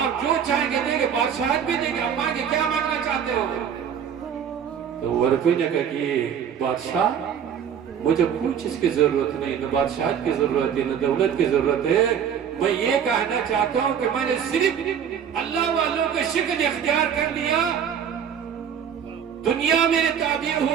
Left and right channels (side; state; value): left; quieter; 8.2 dB